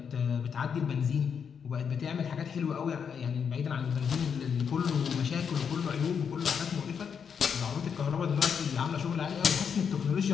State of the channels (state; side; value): quieter; right; 6.9 dB